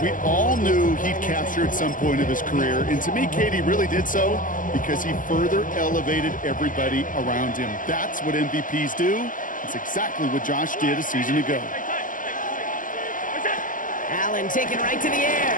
We all knew he'd capture at some point of his career. And to me, Katie really did so because he further elevated everybody around him. That's what MVPs do. It's exactly what Josh did a season ago. Allen taken right to the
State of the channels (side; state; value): right; late; 0.38 ms